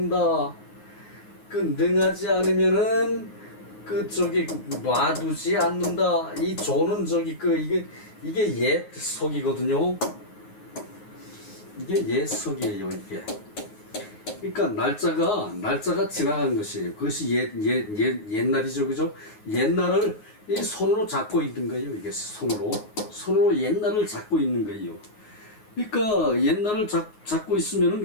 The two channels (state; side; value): late; right; 9.5 ms